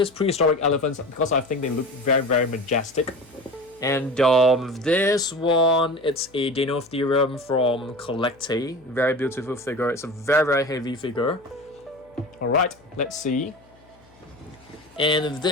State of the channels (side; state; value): left; noise; hum, 28 dB below the sound